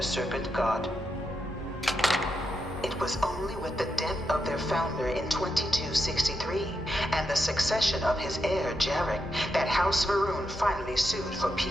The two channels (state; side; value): normal; both; correlation 0.85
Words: serpent god. It was only with the death of their founder in 2263 and the succession of his heir Jarek that House Varun finally sued for